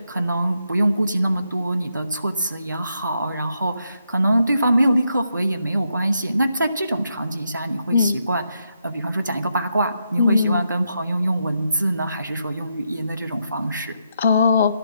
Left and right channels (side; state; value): both; inverted; correlation -0.81